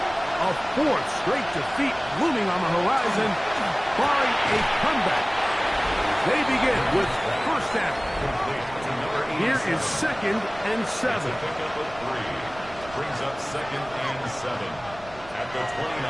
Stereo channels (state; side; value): noise; right; rumble, 19 dB below the sound